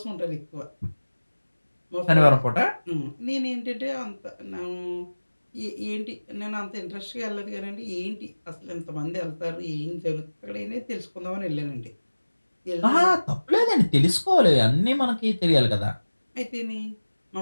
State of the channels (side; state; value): both; inverted; correlation -1.00